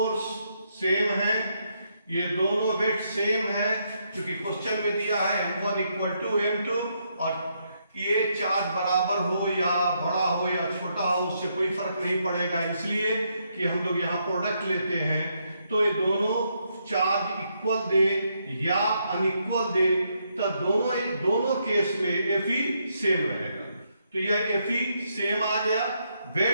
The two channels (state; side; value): inverted; both; correlation -0.77